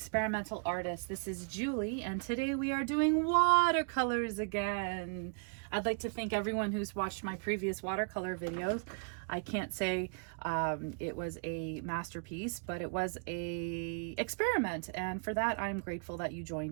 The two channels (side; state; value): left; quieter; 39.1 dB